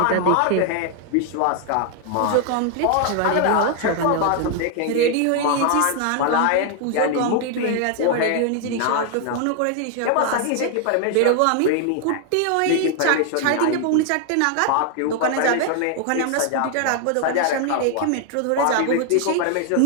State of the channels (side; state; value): both; different; correlation 0.00